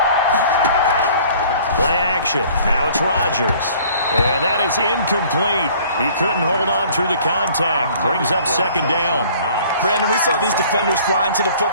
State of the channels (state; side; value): inverted; both; correlation -0.53